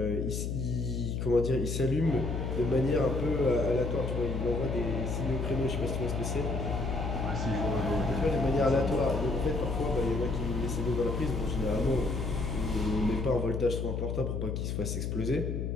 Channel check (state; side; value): noise; left; hum, 2 dB below the sound